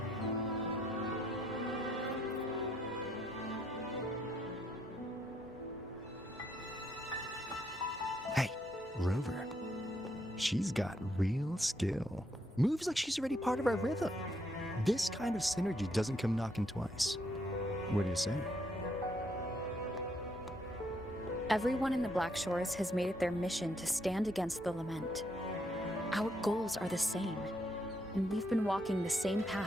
Hey, Rover. She's got real skill. Moves like she's already part of our rhythm. This kind of synergy doesn't come knocking twice. What do you say? Everyone in the Black Shores has made it their mission to stand against the Lament. Our goals are the same, and we've been walking the same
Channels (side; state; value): both; normal; correlation 0.74